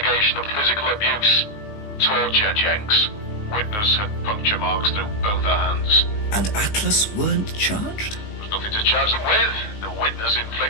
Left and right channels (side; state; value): right; late; 19 ms